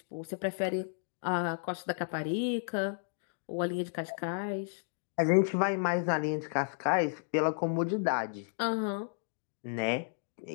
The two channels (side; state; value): right; silent; digital silence